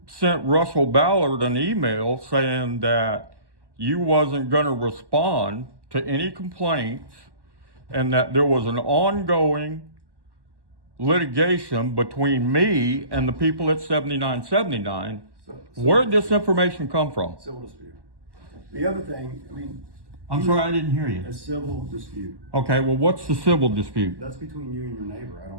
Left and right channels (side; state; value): left; late; 1.1 ms